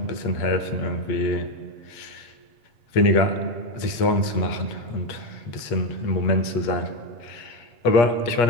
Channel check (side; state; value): right; late; 8.4 ms